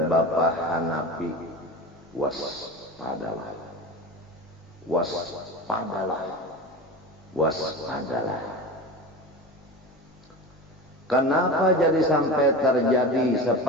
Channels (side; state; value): both; normal; correlation 0.29